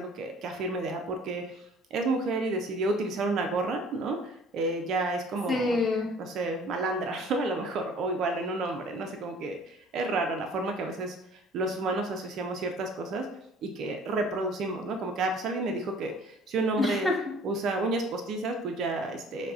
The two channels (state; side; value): normal; both; correlation 0.51